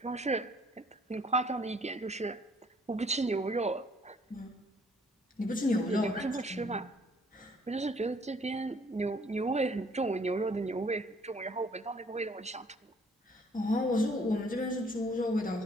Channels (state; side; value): normal; both; correlation 0.61